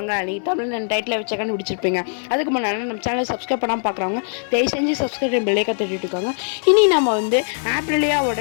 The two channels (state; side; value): silent; right; digital silence